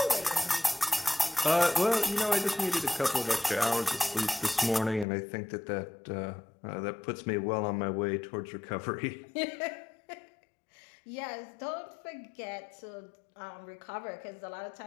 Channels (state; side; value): drops out; right; at 5.1 s